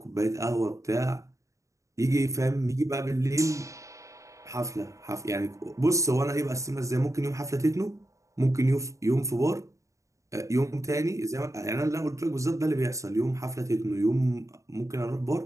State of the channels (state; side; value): late; left; 0.15 ms